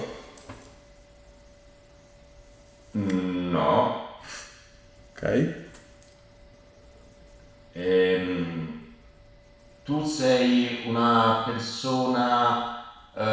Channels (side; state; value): both; identical; correlation 1.00